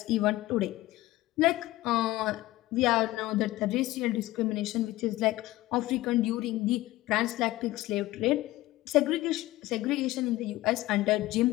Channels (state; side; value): quieter; right; 17.5 dB